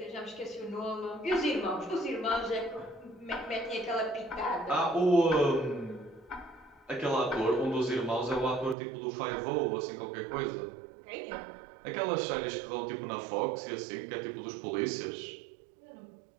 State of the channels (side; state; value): left; drops out; at 8.8 s